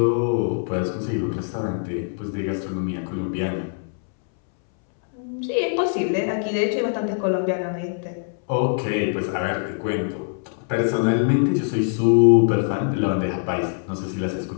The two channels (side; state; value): right; silent; 63 dB below the other